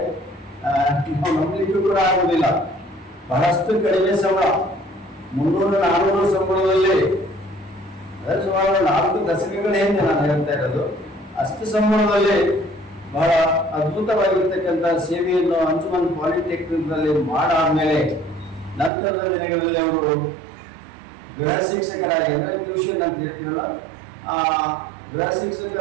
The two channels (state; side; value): drops out; left; at 18.9 s